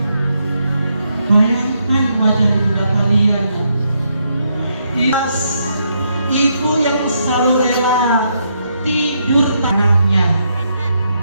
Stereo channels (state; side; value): inverted; both; correlation -0.78